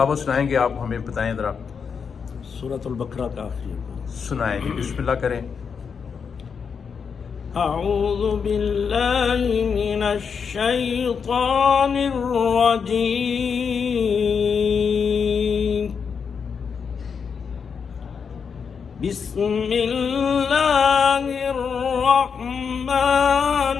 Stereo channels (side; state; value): right; quieter; 6.2 dB